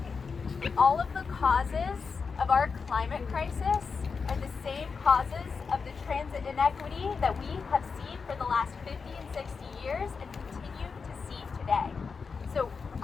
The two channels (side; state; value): right; quieter; 5.2 dB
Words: all of the causes of our climate crisis are the same causes of the transit inequity that we have seen for the last 50 and 60 years and continue to see today. So